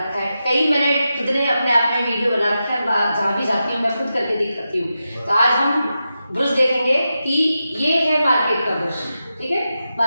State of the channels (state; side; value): inverted; both; correlation -0.89